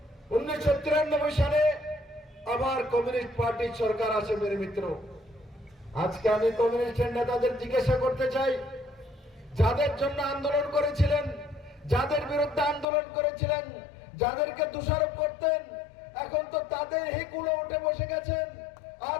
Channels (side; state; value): right; drops out; at 12.9 s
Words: 1993 সালে আবার কমিউনিস্ট পার্টির সরকার আসে। মেরে মিত্র, আজকে আমি কমিউনিস্টের নেতাদের জিজ্ঞাসা করতে চাই, যাদের জন্য আন্দোলন করেছিলেন, যাদের বিরুদ্ধে আন্দোলন করেছিলেন, যাদেরকে দোষারোপ করতেন, এখন তো তাদের হিকুলো উঠে বসে গেছেন। আর